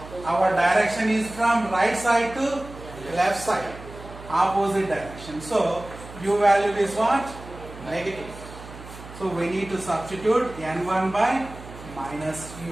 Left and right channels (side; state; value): right; noise; hum, 15 dB below the sound